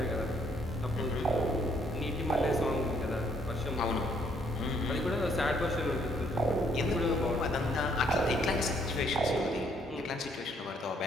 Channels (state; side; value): normal; both; correlation 0.68